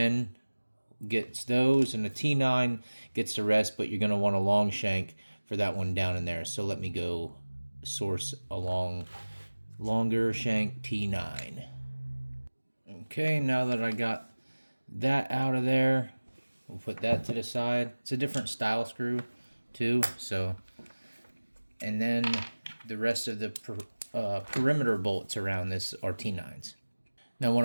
gets those, and a T9 gets the rest, but you're going to want a long shank for that one down in there. So let me go source a longer shank T9. Okay, now that I got that out of there, we'll put that to the side. It's a different style screw too, so, and then the rest of the perimeter bolts around this are T9s. Now what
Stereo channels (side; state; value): both; inverted; correlation -1.00